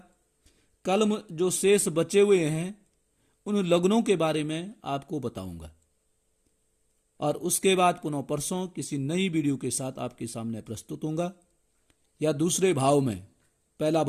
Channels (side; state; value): both; identical; correlation 1.00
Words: कल जो शेष बचे हुए हैं उन लग्नों के बारे में आपको बताऊंगा और उसके बाद पुनः परसों किसी नई वीडियो के साथ आपके सामने प्रस्तुत होऊंगा, या दूसरे भाव में। पहला